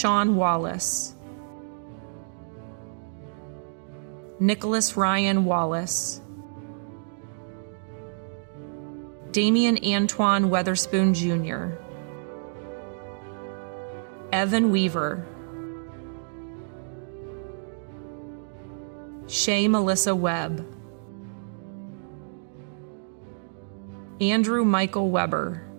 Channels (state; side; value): silent; left; digital silence